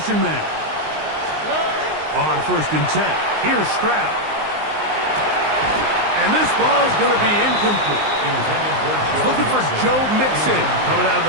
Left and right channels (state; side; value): late; left; 19 ms